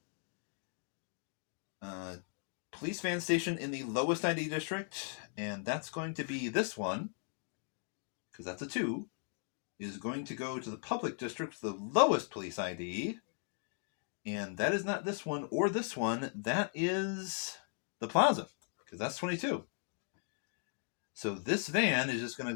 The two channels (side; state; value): right; silent; 53 dB below the other